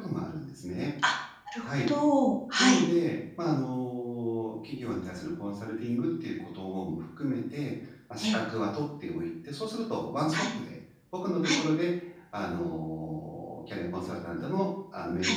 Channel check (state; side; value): identical; both; correlation 1.00